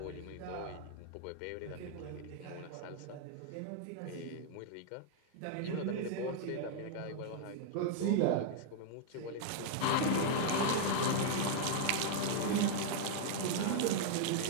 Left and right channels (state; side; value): different; both; correlation -0.01